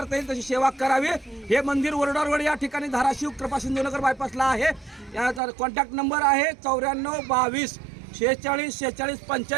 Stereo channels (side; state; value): left; drops out; at 5.4 s